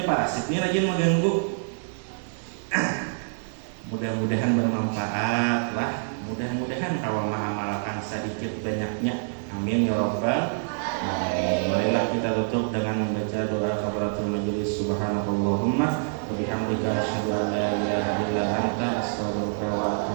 parasit ini rajin mengganggu. Mudah-mudahan bermanfaat lah. Mudah-mudahan kalau mengamalkan sedikit banyaknya. Amin ya rabbal alamin. Marilah kita tutup dengan membaca doa kafaratul majelis. Subhanakallahumma wa bihamdika asyhadu an la ilaha illa anta astaghfiruka wa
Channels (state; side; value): silent; left; 60 dB below the other